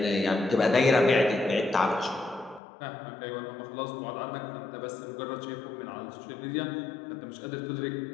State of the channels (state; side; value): drops out; right; at 2.6 s